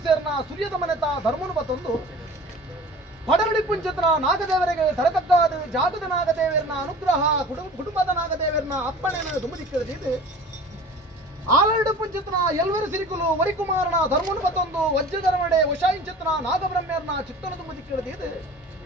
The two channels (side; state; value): both; normal; correlation 0.42